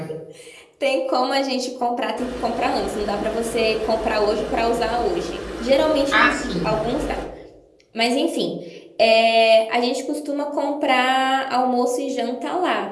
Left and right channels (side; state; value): both; identical; correlation 1.00